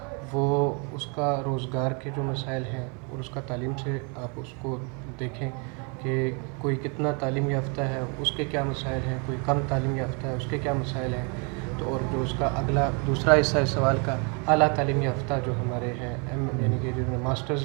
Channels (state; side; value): quieter; left; 34.6 dB